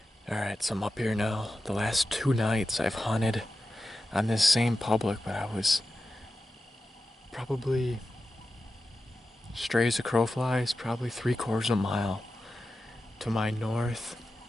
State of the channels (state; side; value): normal; both; correlation 0.92